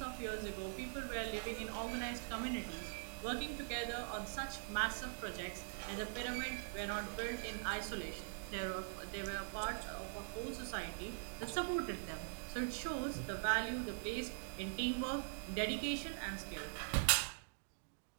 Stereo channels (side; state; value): left; silent; digital silence